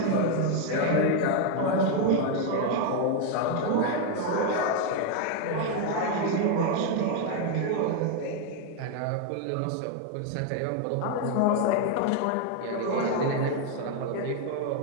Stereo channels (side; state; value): both; different; correlation 0.01